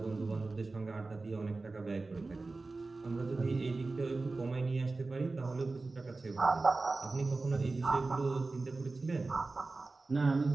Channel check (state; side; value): quieter; left; 3.5 dB